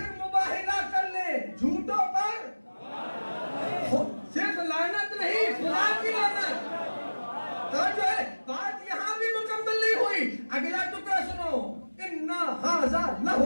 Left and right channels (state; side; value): inverted; both; correlation -1.00